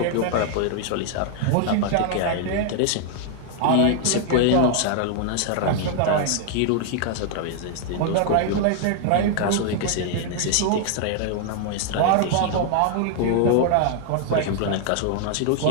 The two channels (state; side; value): different; both; correlation 0.00